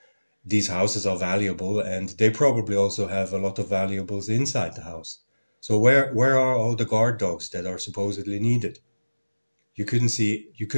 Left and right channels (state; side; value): inverted; both; correlation -1.00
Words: these houses are valuable, and they probably also have a lot of valuables inside the house. So where are all the guard dogs that are supposedly needed? You